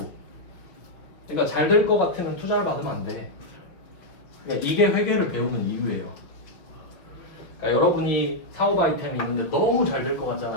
그러니까 잘 될 것 같으면 투자를 받으면 안 돼. 그러니까 이게 회계를 배우는 이유예요. 그러니까 여러분이 사업 아이템이 있는데 너무 잘 될 것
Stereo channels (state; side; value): late; right; 5.8 ms